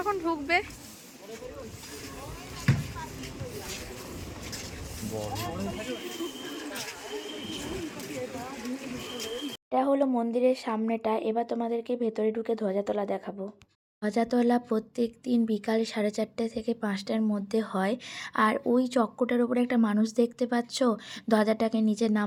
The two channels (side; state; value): both; identical; correlation 1.00